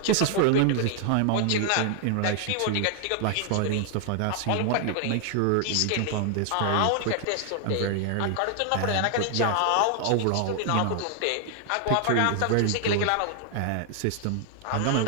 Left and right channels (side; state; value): both; different; correlation 0.00